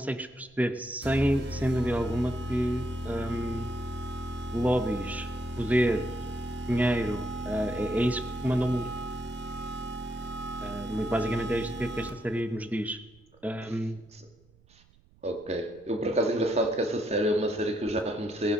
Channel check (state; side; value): noise; right; rumble, 29 dB below the sound